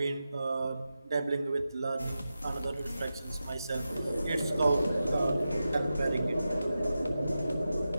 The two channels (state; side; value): inverted; both; correlation -0.91